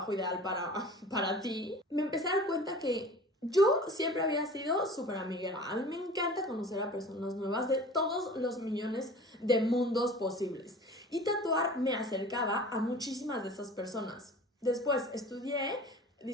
ideal para ti, me empecé a dar cuenta que yo siempre había sido súper amiguera. A mí me encanta conocer a personas nuevas de todos los millones de mundos posibles. Y tatuar me acercaba a muchísimas de esas personas. Después estudié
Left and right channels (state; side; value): normal; both; correlation 0.42